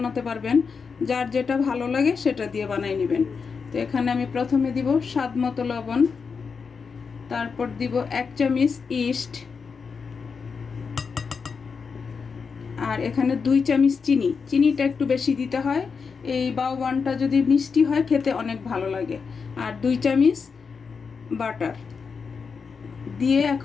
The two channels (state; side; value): quieter; right; 5.5 dB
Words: পারবেন, যার যেটা ভালো লাগে সেটা দিয়ে বানাই নেবেন। তো এখানে আমি প্রথমে দিব স্বাদ মতো লবণ, তারপর দিব 1 চামচ ইস্ট, আর এখানে 2 চামচ চিনি। চিনিটা একটু বেশি দিতে হয়, এই বাওবানটা যদি মিষ্টি হয় খেতে অনেক ভালো লাগে। আর 2 চামচ বাটার দিয়ে